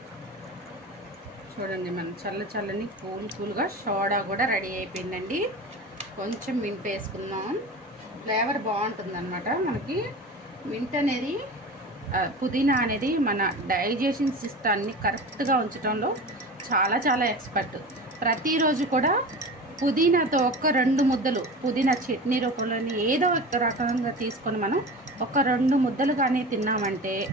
చూడండి, మనం చల్లని కూల్గా సోడా కూడా రెడీ అయిపోయిందండి. కొంచెం మింట్ వేసుకుందాం, ఫ్లేవర్ బాగుంటుంది అన్నమాట. మనకి మింట్ అనేది, పుదీనా అనేది మన డైజెషన్ సిస్టాన్ని కరెక్ట్గా ఉంచడంలో చాలా చాలా ఎక్స్పర్ట్. ప్రతిరోజు కూడా పుదీనాతో ఒక 2 ముద్దలు పుదీనా చట్నీ రూపంలోని ఏదో ఒక రకంగా తీసుకొని మనం ఒక 2 ముద్దలు కానీ తిన్నామంటే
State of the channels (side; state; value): both; normal; correlation 0.32